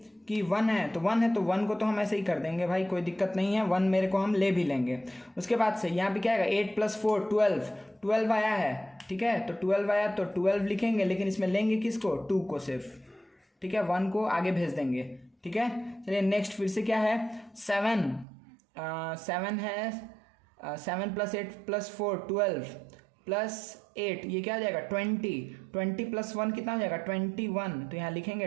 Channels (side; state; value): left; drops out; at 18.2 s